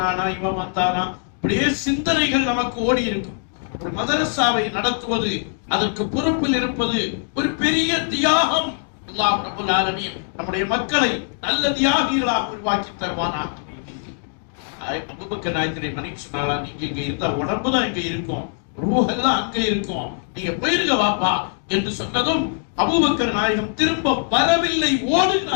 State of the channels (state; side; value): silent; right; digital silence